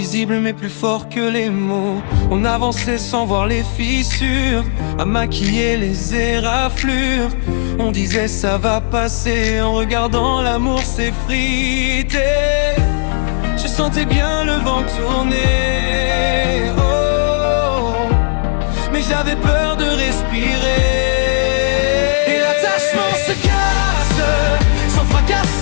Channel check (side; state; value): right; silent; digital silence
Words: mais plus fort que les mots. On avançait sans voir les fissures, à maquiller les éraflures. On disait ça va passer, en regardant l'amour s'effriter. Je sentais bien le vent tourner, oh, mais j'avais peur de respirer. Et l'attachement se casse, sans fracas,